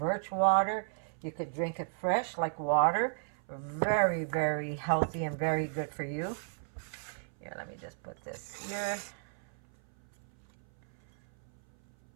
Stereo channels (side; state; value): left; silent; 55 dB below the other